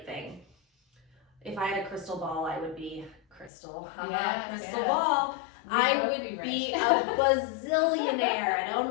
thing. If I had a crystal ball, I would be crystal ball. I would be a bazillionaire. I'd own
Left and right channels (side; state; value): right; drops out; at 3.5 s